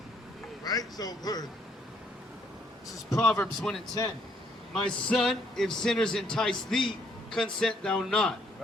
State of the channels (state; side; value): normal; both; correlation 0.69